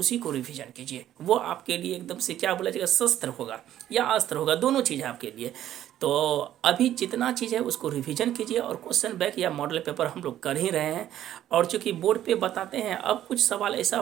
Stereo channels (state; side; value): quieter; left; 12.0 dB